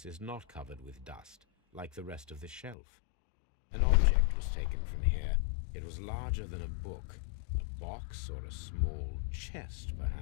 is not covered with dust, like the rest of the shelf. An object was taken from here. It was larger than a book, a box or a small chest,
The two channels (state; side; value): drops out; right; at 2.8 s